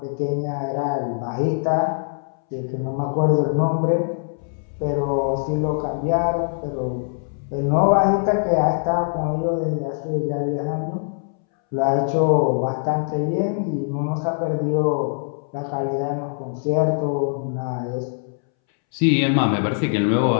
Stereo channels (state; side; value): silent; right; 64 dB below the other